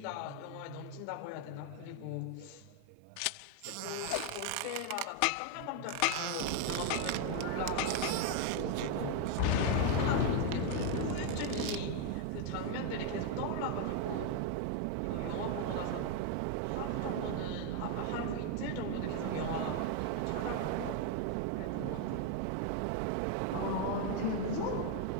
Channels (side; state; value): both; different; correlation 0.01